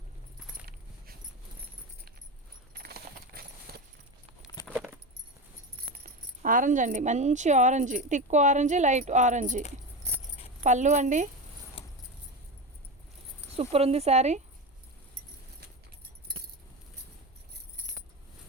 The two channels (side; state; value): both; normal; correlation 0.21